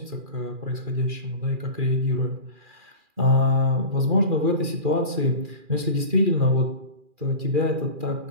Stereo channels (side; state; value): left; late; 2.4 ms